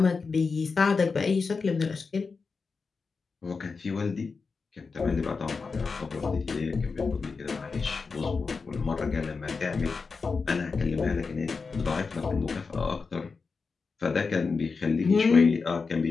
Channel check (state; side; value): quieter; right; 4.7 dB